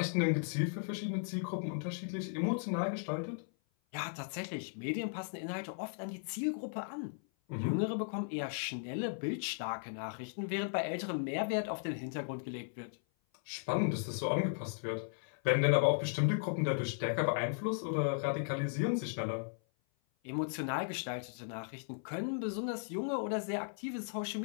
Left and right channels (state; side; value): silent; right; 53 dB below the other